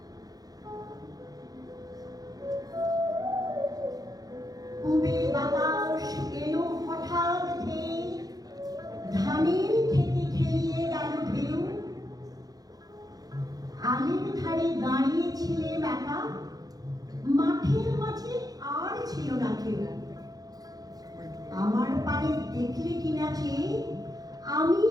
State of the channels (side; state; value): left; late; 0.18 ms